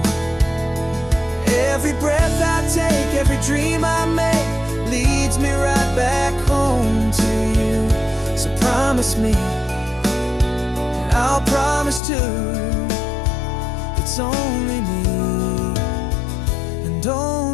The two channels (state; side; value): drops out; right; at 12.0 s